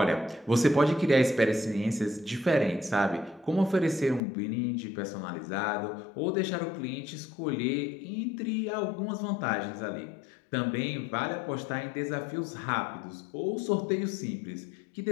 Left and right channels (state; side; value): drops out; right; at 4.2 s